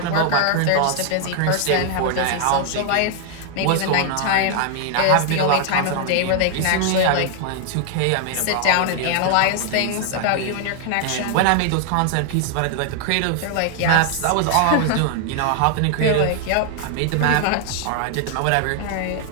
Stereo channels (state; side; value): different; both; correlation 0.00